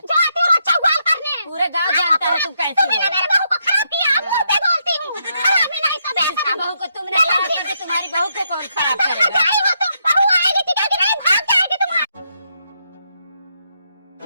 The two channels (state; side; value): inverted; both; correlation -0.79